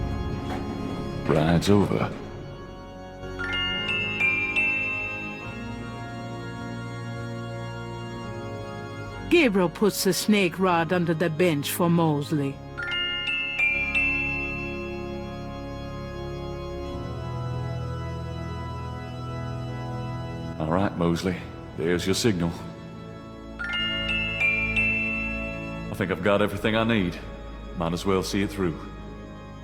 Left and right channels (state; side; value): identical; both; correlation 1.00